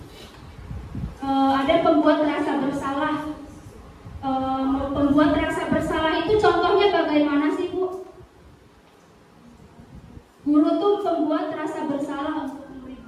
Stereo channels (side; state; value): both; identical; correlation 1.00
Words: ada pembuat rasa bersalah. Pembuat rasa bersalah itu contohnya bagaimana sih Bu? Guru tuh pembuat rasa bersalah untuk